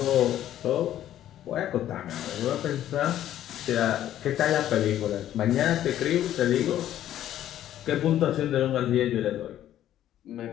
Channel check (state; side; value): quieter; right; 12.0 dB